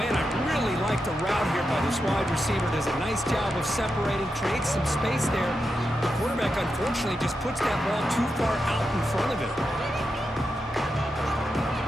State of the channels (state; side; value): normal; both; correlation 0.87